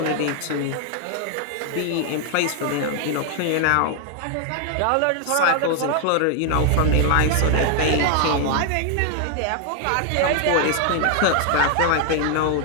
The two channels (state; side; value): different; both; correlation 0.00